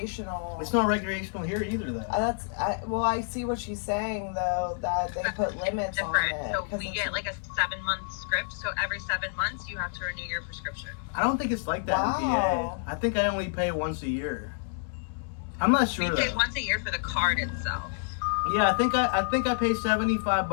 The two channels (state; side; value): silent; right; 59 dB below the other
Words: It's not recreational here either, though. I see what she's saying, though, that they put limits on it. So we get like a 7-month script, so every 7 months you have to renew your prescription. I don't think it's like that in PA. I think I only pay once a year. I'm not sure. We pay once a year for the card itself. Yeah, I think I pay